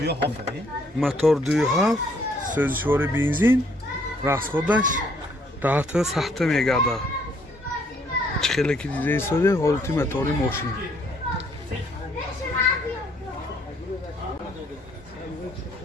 мотор 2.7 сӯзишвори бензин расходаш 10 сахта мегардад чӣ хеле ки дида истоде ҳолати мотори мошин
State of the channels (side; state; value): both; normal; correlation 0.66